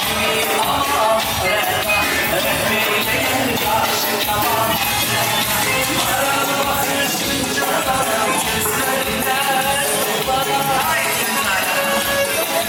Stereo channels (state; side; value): identical; both; correlation 1.00